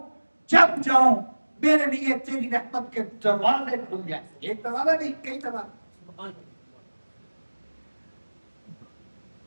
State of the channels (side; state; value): both; inverted; correlation -1.00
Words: جب جاؤں میرے لیے تیری رحمت کے دروازے کھل جائیں۔ ایک دروازہ نہیں، کئی دروازے۔